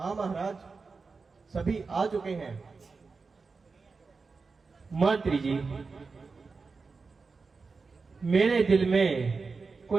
महाराज, सभी आ चुके हैं। मंत्री जी, मेरे दिल में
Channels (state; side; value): quieter; left; 4.5 dB